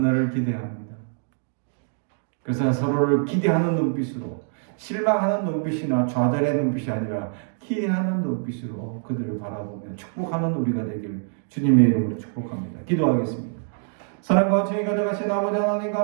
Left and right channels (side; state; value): left; silent; 62 dB below the other